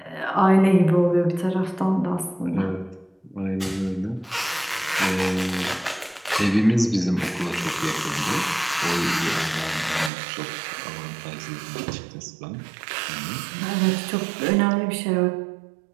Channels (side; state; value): left; drops out; at 10.1 s